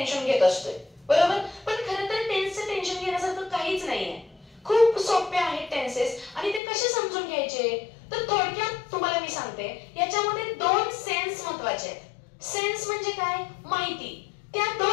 घेत असतोय, बरोबर. पण खरं तर टेन्सचं टेन्शन घेण्यासारखं काहीच नाहीये. खूप सोपे आहेत टेन्सेस. आणि ते कसे समजून घ्यायचे तर थोडक्यात तुम्हाला मी सांगते. याच्यामध्ये दोन सेन्स महत्त्वाचे आहेत. सेन्स म्हणजे काय, माहिती. त्या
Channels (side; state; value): right; drops out; at 6.6 s